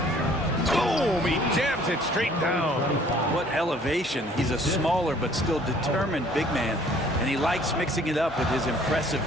Boom! He jams it straight down. What elevation. He's a smaller but still determined big man, and he likes mixing it up with his impressive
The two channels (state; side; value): normal; both; correlation 0.56